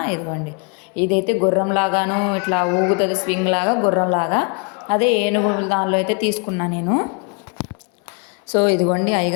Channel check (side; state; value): right; quieter; 36.0 dB